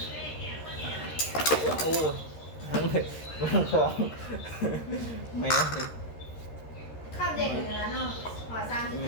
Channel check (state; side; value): late; right; 13 ms